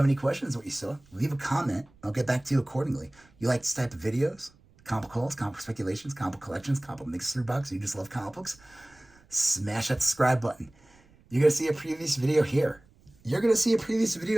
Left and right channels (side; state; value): right; noise; rumble, 29 dB below the sound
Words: any questions what you saw, leave a comment. I'll get back to you accordingly. You like this type of videos? Comic hauls, comic speculations, comic collections, comic mystery box. You just love comic books? Smash that subscribe button. You're going to see a previous video here. You're going to see a previous